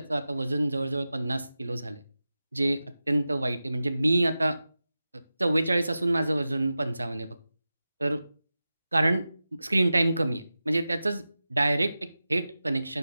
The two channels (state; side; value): inverted; both; correlation -0.94